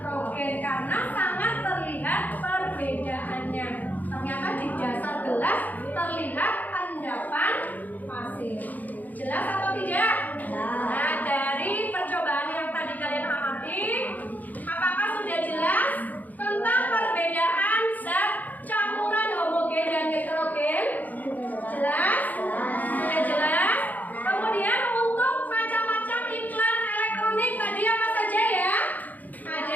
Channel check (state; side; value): late; right; 0.081 ms